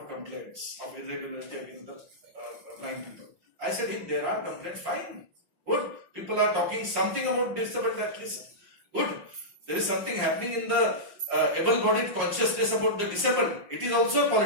complaints of irregularity against the blind people. I said, if there are complaints, fine. Good. People are talking something about disabled, at least. Good. There is something happening in the able-bodied consciousness about the disabled. It is also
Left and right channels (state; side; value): late; left; 5.6 ms